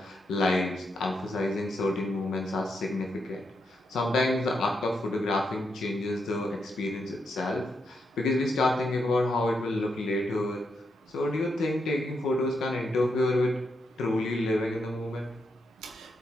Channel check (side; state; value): both; normal; correlation 0.82